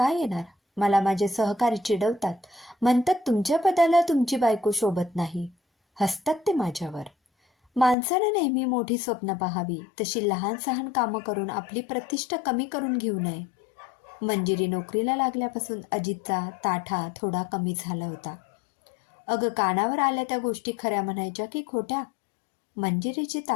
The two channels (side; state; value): right; drops out; at 8.0 s